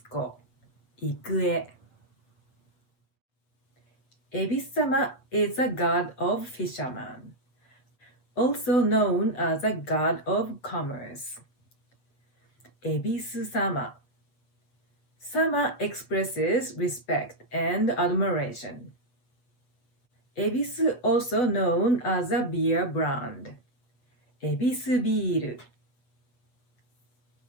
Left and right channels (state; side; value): late; right; 8.0 ms